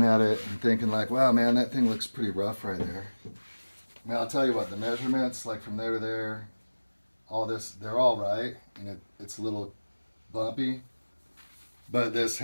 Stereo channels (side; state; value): both; inverted; correlation -1.00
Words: at it and thinking like, wow, man, that thing looks pretty rough right there. I mean, I'll tell you what, the measurements, like from there to there, all this, they're all right. And it's a little bumpy. But this